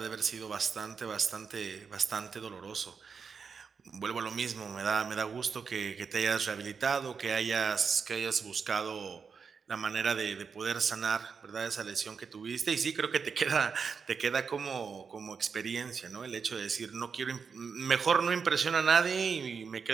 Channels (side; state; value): left; quieter; 5.8 dB